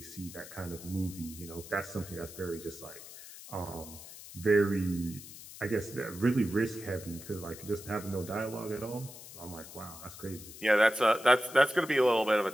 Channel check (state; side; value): noise; left; hiss, 15 dB below the sound